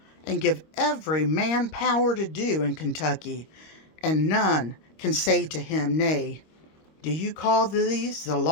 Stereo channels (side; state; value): right; late; 26 ms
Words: and give every man power to do in Kentucky, and none can say to him nay. Do you call these the